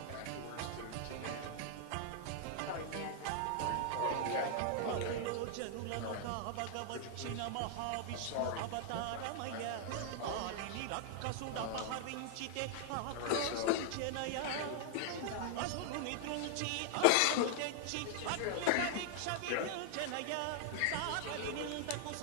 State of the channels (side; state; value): both; different; correlation 0.00